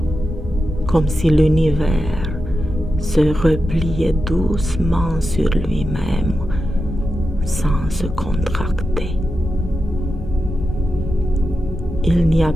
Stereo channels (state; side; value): normal; both; correlation 0.89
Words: comme si l'univers se repliait doucement sur lui-même sans se contracter. Il n'y a